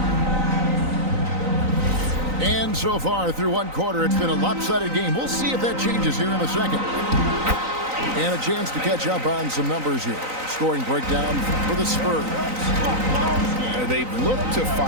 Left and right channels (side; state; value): left; late; 3.9 ms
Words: And so far through one quarter, it's been a lopsided game. We'll see if that changes here in a second. And a chance to catch up on some numbers here. Scoring breakdown for the Spurs. They've looked to